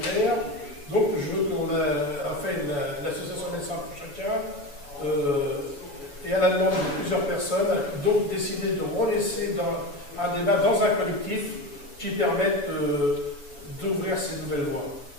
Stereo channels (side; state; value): right; late; 7.0 ms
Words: Donc je veux qu'on a fait l'association Médecins pour chacun et à la demande de plusieurs personnes, donc décidé de relaisser un débat dans un collectif qui permette d'ouvrir ces nouvelles voies.